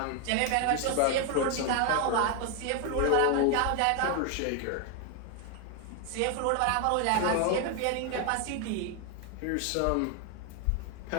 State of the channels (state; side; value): different; both; correlation 0.01